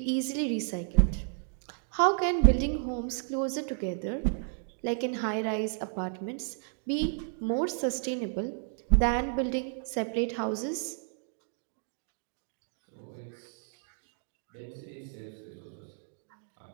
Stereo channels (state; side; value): silent; left; digital silence